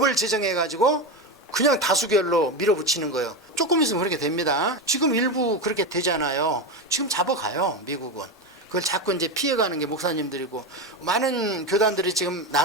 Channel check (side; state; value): both; normal; correlation 0.17